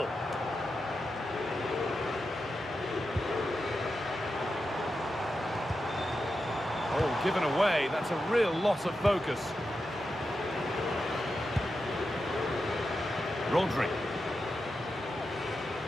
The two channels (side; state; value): both; normal; correlation 0.89